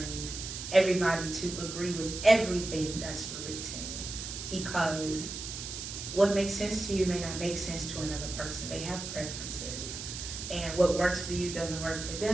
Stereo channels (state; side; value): noise; right; hiss, 7 dB below the sound